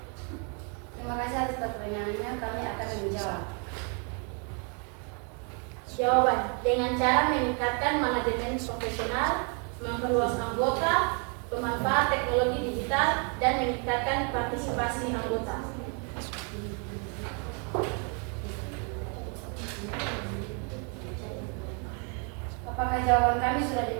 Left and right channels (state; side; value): quieter; left; 37.9 dB